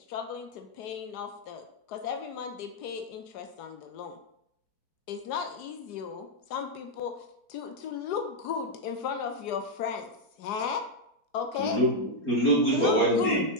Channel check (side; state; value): right; late; 4.8 ms